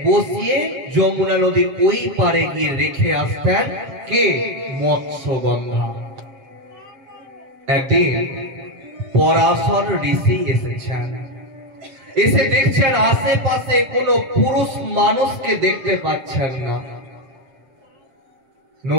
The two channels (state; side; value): late; left; 7.4 ms